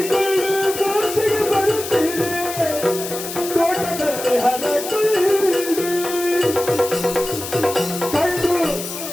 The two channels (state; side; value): noise; left; hiss, 8 dB below the sound